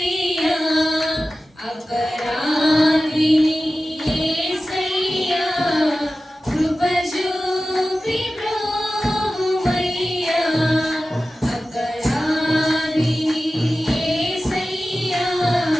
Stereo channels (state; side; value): normal; both; correlation 0.95